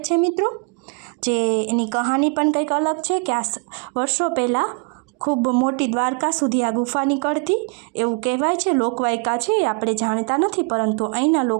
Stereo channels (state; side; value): quieter; left; 34.9 dB